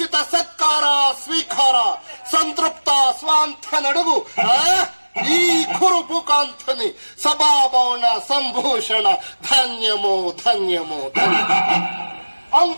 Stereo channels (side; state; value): both; inverted; correlation -1.00